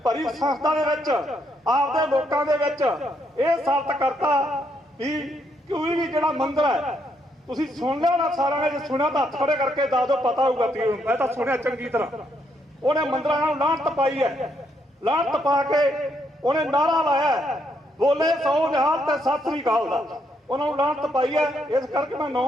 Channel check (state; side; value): normal; both; correlation 0.75